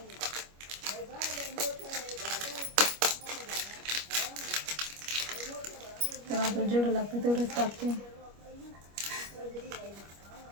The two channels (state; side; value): late; left; 25 ms